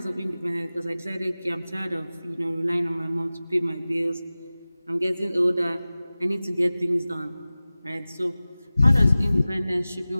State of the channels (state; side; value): inverted; both; correlation -0.97